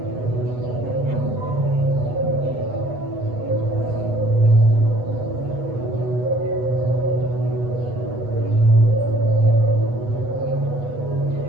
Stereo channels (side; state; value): left; late; 8.1 ms